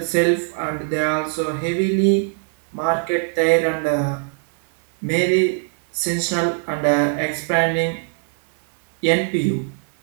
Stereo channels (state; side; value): silent; left; 64 dB below the other